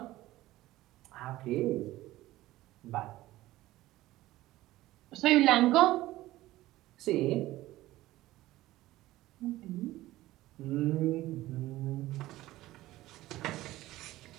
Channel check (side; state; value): left; quieter; 16.5 dB